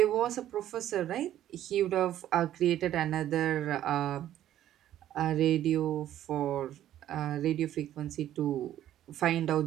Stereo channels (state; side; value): quieter; left; 12.1 dB